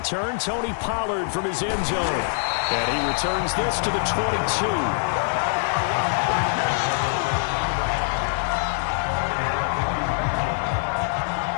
Tony Pollard from his end zone. And he returns this to the 22.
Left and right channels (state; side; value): silent; right; digital silence